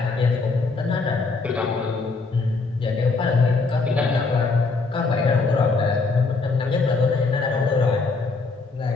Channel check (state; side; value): quieter; right; 4.0 dB